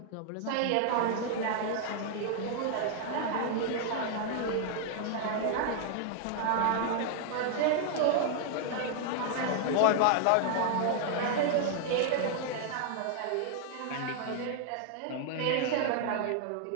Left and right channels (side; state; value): both; different; correlation -0.01